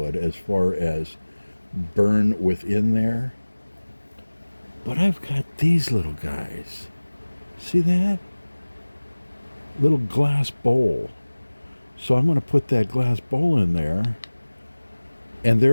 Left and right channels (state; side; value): inverted; both; correlation -1.00